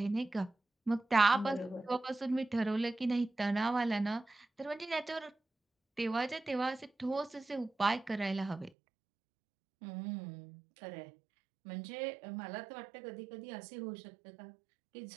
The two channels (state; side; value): drops out; left; at 8.7 s